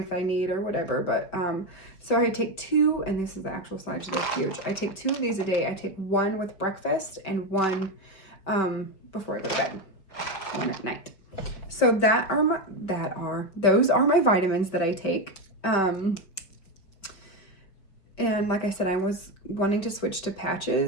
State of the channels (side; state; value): right; late; 5.0 ms